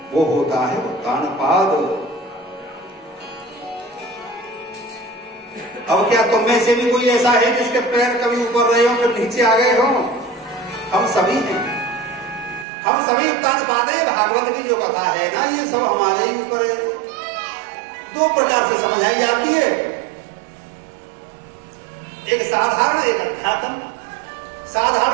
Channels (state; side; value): drops out; left; at 12.7 s